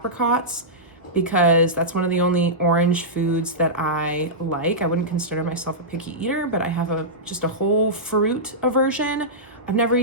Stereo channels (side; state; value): both; normal; correlation -0.14